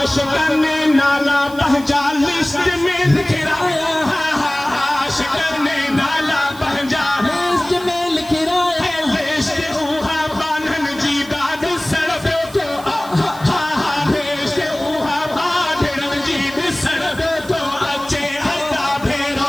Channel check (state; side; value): noise; right; hiss, 19 dB below the sound